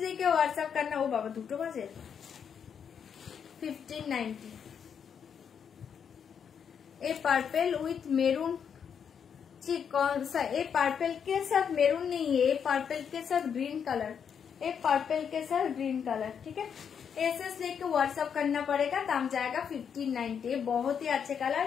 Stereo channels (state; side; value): quieter; right; 7.4 dB